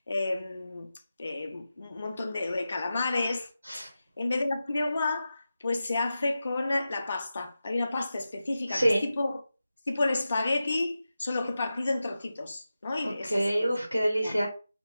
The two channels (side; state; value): both; inverted; correlation -0.93